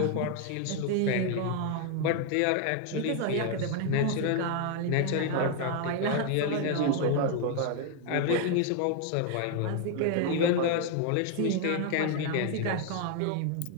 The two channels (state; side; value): different; both; correlation 0.01